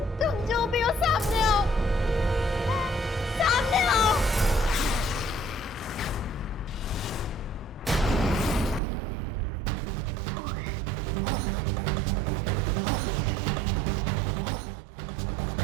तुम जो भी हो सामने आओ, सामने आओ।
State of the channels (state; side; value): drops out; left; at 8.8 s